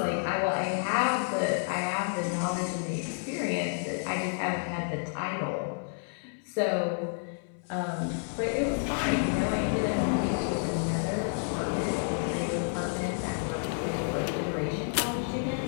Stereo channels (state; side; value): silent; right; 58 dB below the other